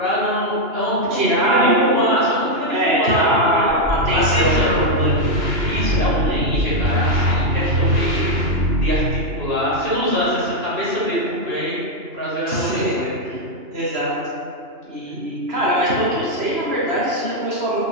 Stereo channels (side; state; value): left; late; 2.9 ms